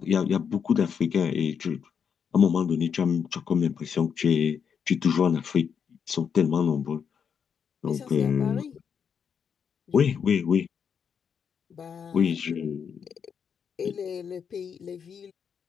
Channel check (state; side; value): quieter; right; 7.0 dB